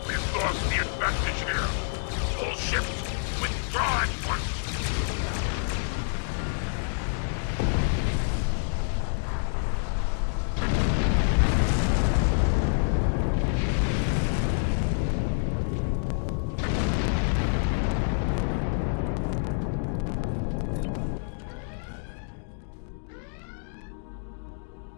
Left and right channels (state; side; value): silent; right; digital silence